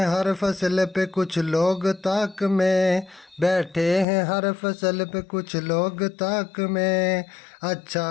हर फसल पे कुछ लोग ताक में, बैठे हैं हर फसल पे कुछ लोग ताक में, अच्छा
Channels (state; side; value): drops out; right; at 4.0 s